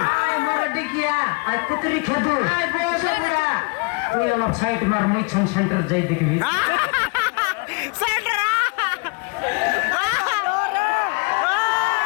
আই মোরা ডিকিয়া আই কুতরি খেদু আই বসে পুরা তুই অলপ সাইড মার মুই ছন সেন্টার যাই দেখবি সেন্টার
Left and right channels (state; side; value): quieter; right; 30.8 dB